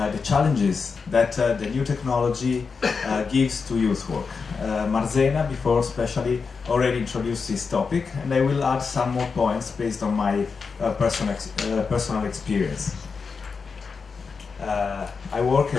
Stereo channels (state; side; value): quieter; right; 5.2 dB